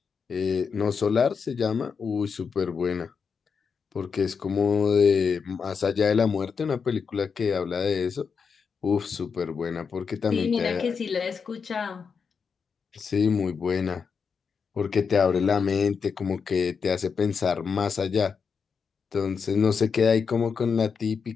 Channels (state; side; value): quieter; right; 5.9 dB